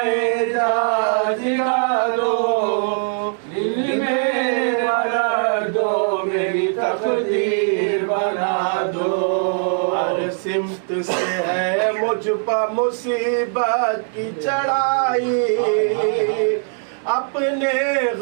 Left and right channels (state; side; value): silent; left; 66 dB below the other